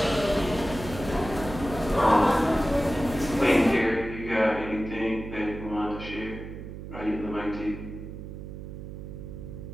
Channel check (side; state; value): right; noise; hum, 10 dB below the sound